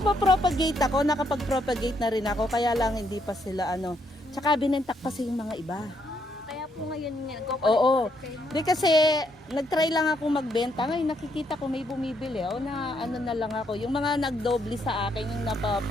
ako, nakapag-propagate na rin ako kaya lang hindi pa sila ano. Tsaka binentak kasi yung mga iba. Kaya po ngayon Oo. go-collect kayo. Di kasi nag-try lang ako magbenta. Ngayon nakikita ko may bumibili. O na ano na lang ako. Yung mga nagdoble sa akin yung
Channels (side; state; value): both; normal; correlation 0.74